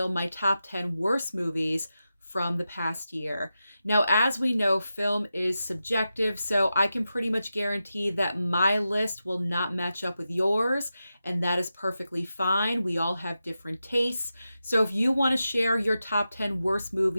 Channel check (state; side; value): inverted; both; correlation -0.90